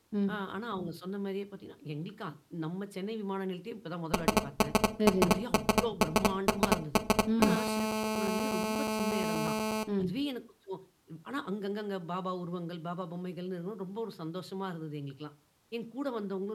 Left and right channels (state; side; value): identical; both; correlation 1.00